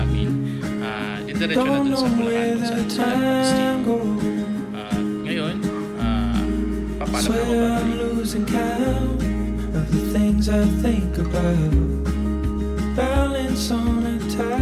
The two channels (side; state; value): both; identical; correlation 1.00